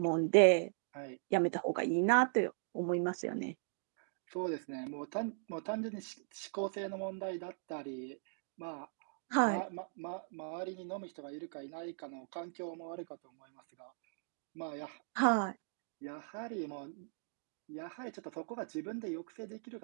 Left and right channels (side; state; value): left; silent; digital silence